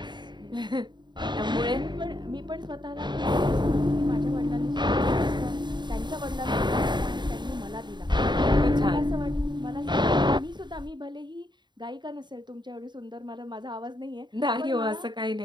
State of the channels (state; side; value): late; left; 0.22 ms